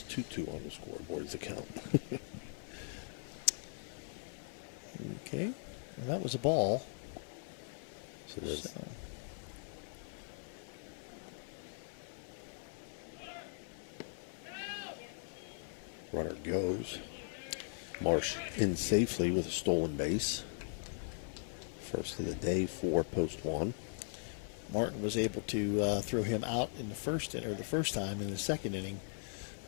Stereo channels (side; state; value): right; silent; 52 dB below the other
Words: 2-2 on the scoreboard as the count. Okay. Well, that was a ball. So there's runner goes. Marsh in safely with a stolen base. First of the day for post one. Martin was able to throw him out in the first time in the second inning.